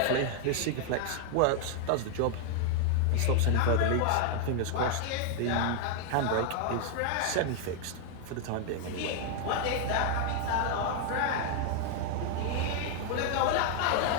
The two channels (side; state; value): both; different; correlation 0.00